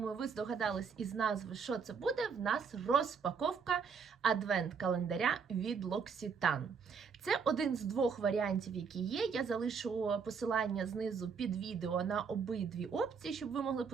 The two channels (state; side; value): quieter; left; 6.0 dB